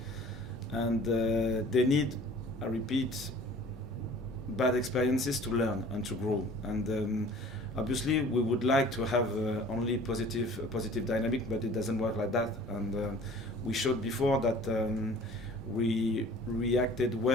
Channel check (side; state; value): both; normal; correlation 0.48